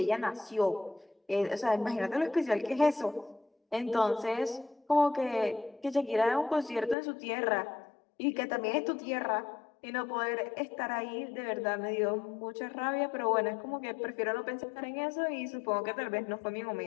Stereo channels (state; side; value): drops out; right; at 7.0 s